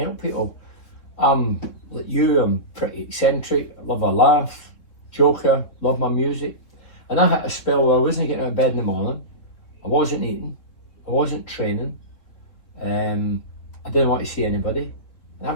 people. I'm like you. I'm pretty eccentric. Love a laugh, joker. Love my music. And I had a spell where I wasn't getting out of bed in the morning. I wasn't eating. I wasn't training. I didn't want to see anybody. And I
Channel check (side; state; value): right; late; 3.7 ms